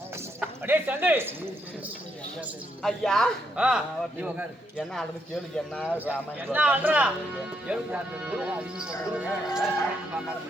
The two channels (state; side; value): normal; both; correlation 0.77